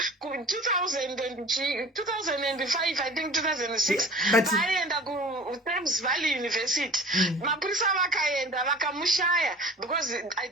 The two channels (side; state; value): both; normal; correlation 0.43